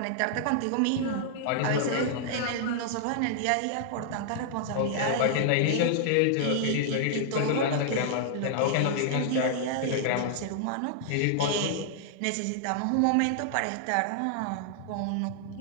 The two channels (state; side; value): different; both; correlation -0.01